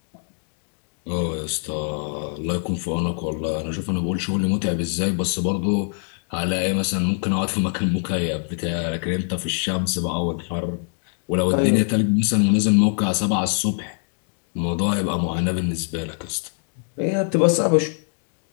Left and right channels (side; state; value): right; silent; 56 dB below the other